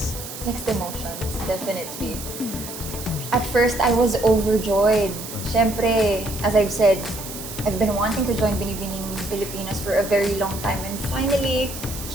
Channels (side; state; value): right; noise; hiss, 10 dB below the sound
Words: Mixed emotions, definitely. At first, I was overjoyed. Siyempre, as I've said, I've been wanting to join Binibining Pilipinas for a very long time, and finally,